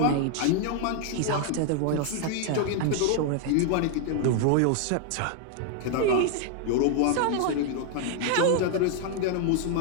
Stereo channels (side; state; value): both; different; correlation 0.00